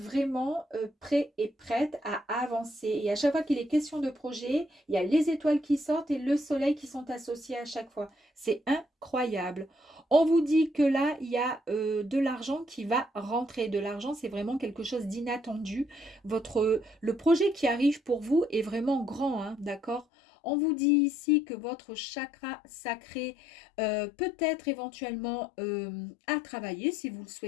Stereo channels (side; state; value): right; drops out; at 20.1 s